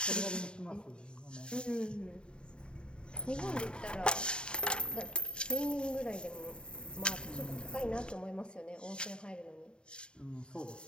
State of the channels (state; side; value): late; right; 0.050 ms